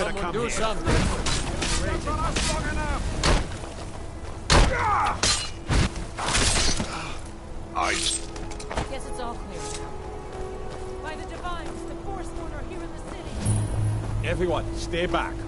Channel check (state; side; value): identical; both; correlation 1.00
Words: have come do here. something. I... Guess it's all clear now. By the Divines, the Forsworn are here in the city. Everyone, stay back.